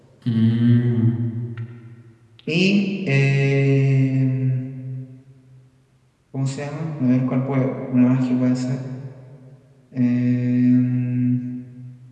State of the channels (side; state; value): both; identical; correlation 1.00